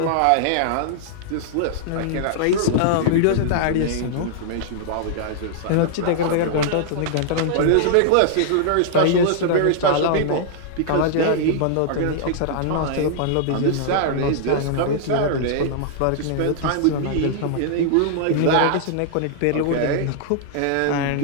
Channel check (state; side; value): different; both; correlation -0.01